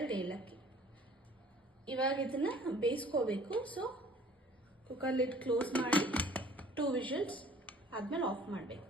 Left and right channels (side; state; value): both; normal; correlation 0.52